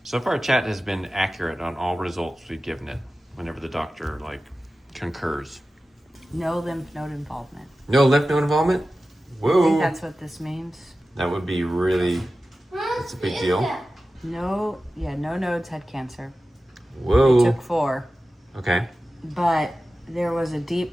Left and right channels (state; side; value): normal; both; correlation 0.94